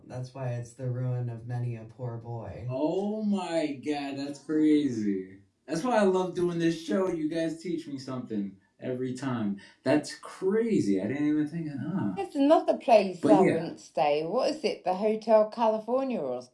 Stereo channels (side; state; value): both; identical; correlation 1.00